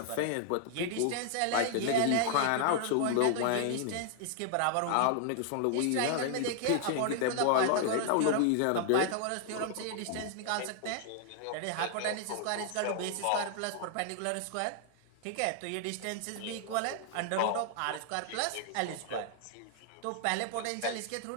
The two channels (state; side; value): different; both; correlation 0.00